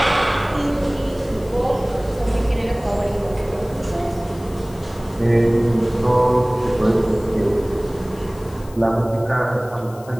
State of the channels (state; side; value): noise; left; hiss, 23 dB below the sound